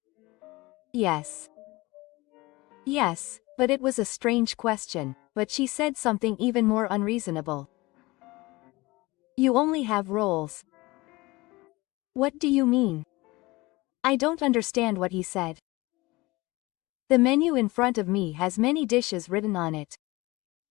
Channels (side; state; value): right; quieter; 21.7 dB